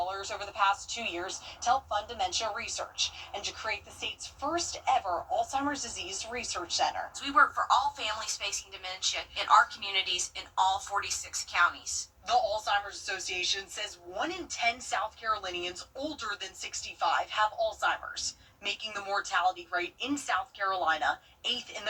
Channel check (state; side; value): identical; both; correlation 1.00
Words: the past 2 years to help fund dementia research and to create the state's first ever Alzheimer's disease research center. We work for all families facing dementia in our communities in all 46 counties. The Alzheimer's Association says 1 in 10 South Carolinians older than 65 have Alzheimer's, making the mortality rate in South Carolina 8th in